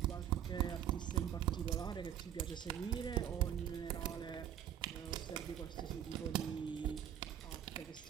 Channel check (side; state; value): left; quieter; 10.1 dB